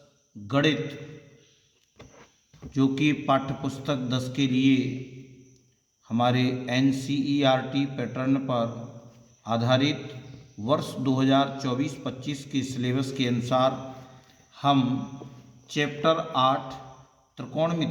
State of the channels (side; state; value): both; identical; correlation 1.00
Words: गणित जो कि पाठ्यपुस्तक 10 के लिए हमारे एनसीईआरटी पैटर्न पर आधारित वर्ष 2024-25 के सिलेबस के अनुसार हम चैप्टर 8